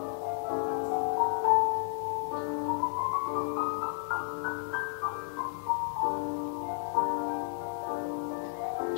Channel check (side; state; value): right; silent; 56 dB below the other